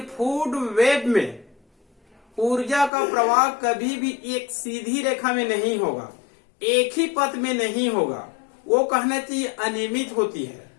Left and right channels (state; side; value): drops out; right; at 2.9 s